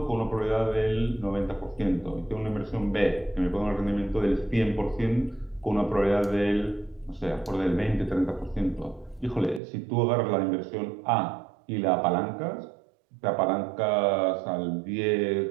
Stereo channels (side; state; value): left; drops out; at 9.6 s